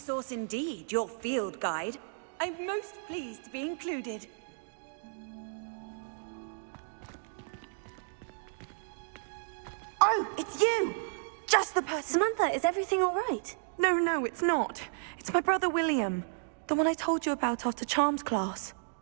indeed, your field guide. I'm most pleased to be included. Oh, it's you! Just the person. Samantha, is everything all right? No, it's not. It's my brother William. The one I told you about after Charms class.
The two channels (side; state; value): left; silent; digital silence